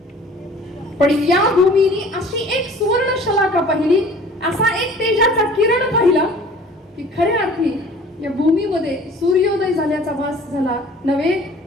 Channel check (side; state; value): both; normal; correlation 0.48